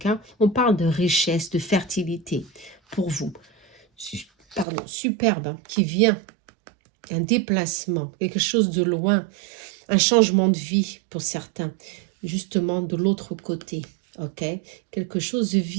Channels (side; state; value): left; drops out; at 4.7 s